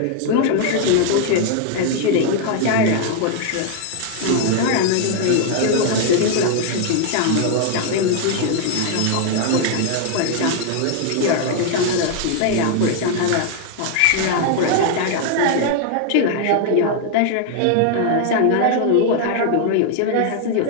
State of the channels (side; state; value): both; different; correlation 0.00